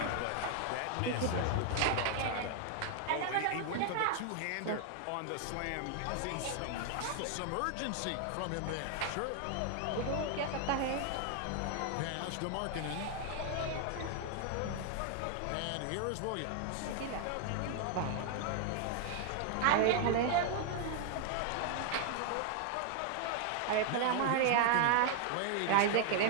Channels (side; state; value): both; different; correlation 0.00